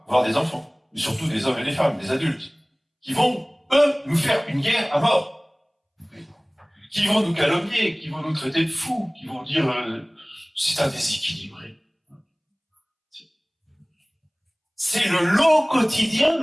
voire des enfants, mais surtout des hommes et des femmes, des adultes, qui vont eux, nous faire une guerre à mort. Qui vont nous calomnier, qui vont nous traiter de fous, qui vont dire c'est un déséquilibré. C'est le lot quotidien de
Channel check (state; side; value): identical; both; correlation 1.00